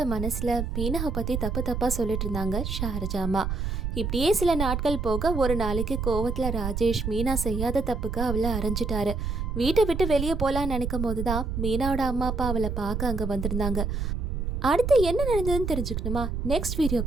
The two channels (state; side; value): noise; right; rumble, 2 dB below the sound